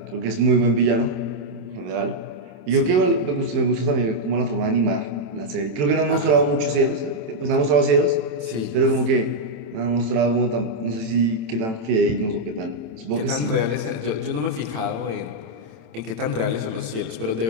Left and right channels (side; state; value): left; late; 27 ms